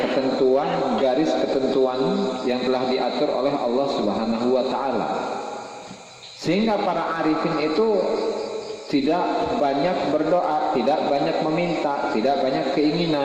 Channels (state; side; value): identical; both; correlation 1.00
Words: garis ketentuan yang telah diatur oleh Allah Subhanahu wa taala. Sehingga para arifin itu tidak banyak berdoa, tidak banyak meminta, tidak banyak